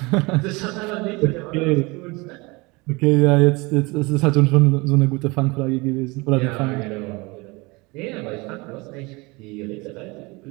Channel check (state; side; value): quieter; left; 25.3 dB